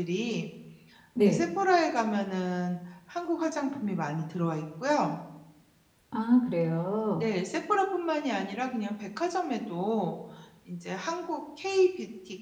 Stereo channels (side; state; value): both; identical; correlation 1.00